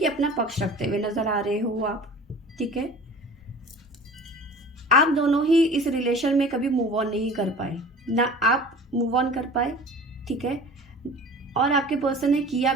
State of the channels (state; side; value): normal; both; correlation 0.42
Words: अपना पक्ष रखते हुए नजर आ रहे हो आप। ठीक है, आप दोनों ही इस रिलेशन में कभी मूव ऑन नहीं कर पाए, ना आप मूव ऑन कर पाए। ठीक है, और आपके पर्सन ने किया